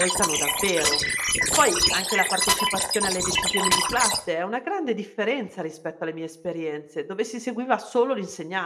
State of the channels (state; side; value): identical; both; correlation 1.00